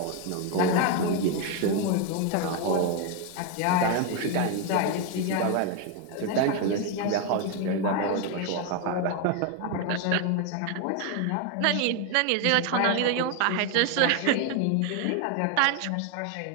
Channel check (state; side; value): different; both; correlation 0.01